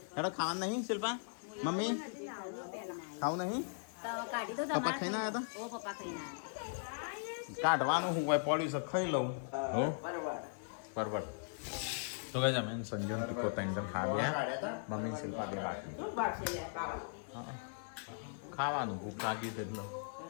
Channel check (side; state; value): right; silent; digital silence